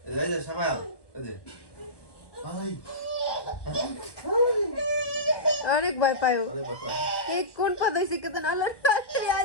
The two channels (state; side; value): late; right; 1.2 ms